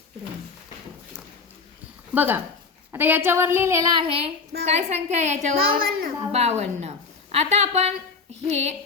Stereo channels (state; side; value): quieter; right; 4.7 dB